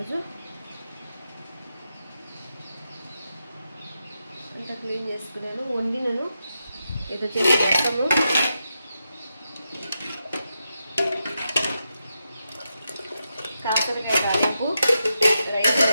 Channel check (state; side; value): inverted; both; correlation -0.86